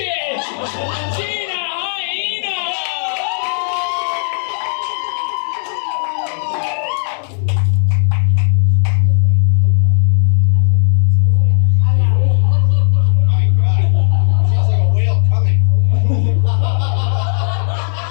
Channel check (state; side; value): silent; right; digital silence